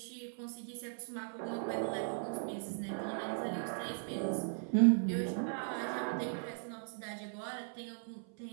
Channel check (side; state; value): left; silent; 52 dB below the other